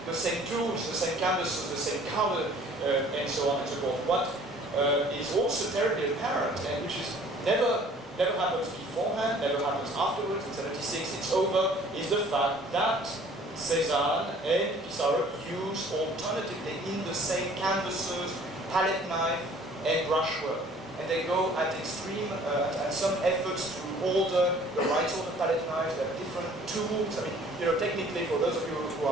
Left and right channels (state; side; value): normal; both; correlation 0.53